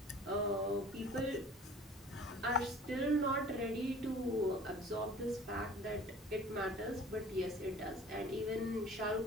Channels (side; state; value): both; normal; correlation 0.46